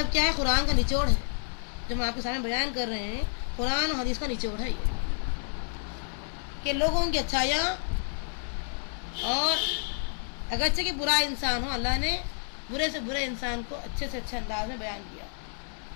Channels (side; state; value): right; silent; 58 dB below the other